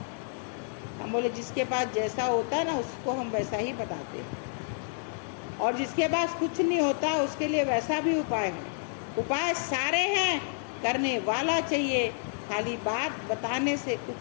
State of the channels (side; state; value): right; silent; 58 dB below the other